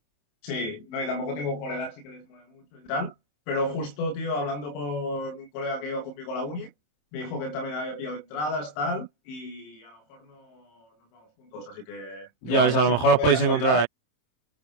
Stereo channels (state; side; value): late; right; 26 ms